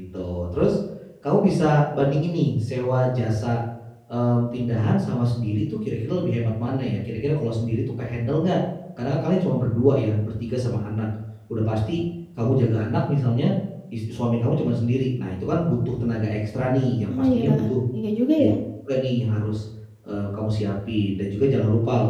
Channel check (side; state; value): both; identical; correlation 1.00